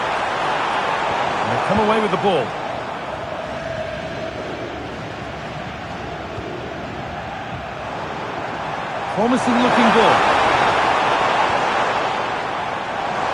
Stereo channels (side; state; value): both; identical; correlation 1.00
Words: Come away with the ball. Promising looking ball.